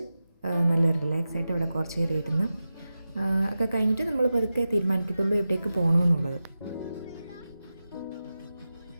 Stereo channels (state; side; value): inverted; both; correlation -0.93